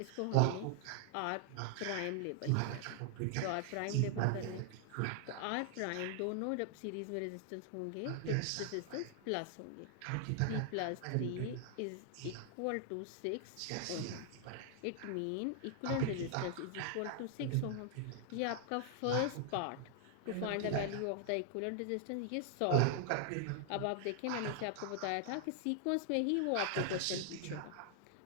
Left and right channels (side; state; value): both; different; correlation 0.00